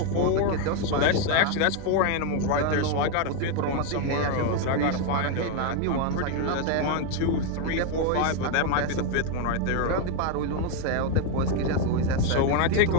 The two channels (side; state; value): both; different; correlation 0.01